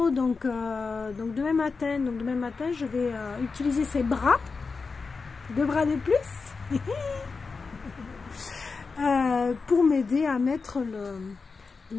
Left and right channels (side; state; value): right; quieter; 4.6 dB